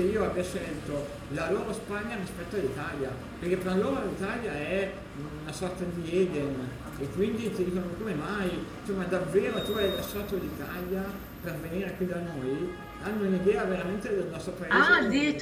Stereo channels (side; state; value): both; identical; correlation 1.00